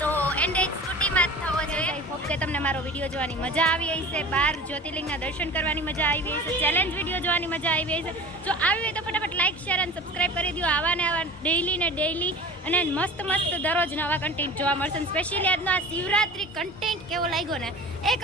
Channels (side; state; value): both; normal; correlation 0.37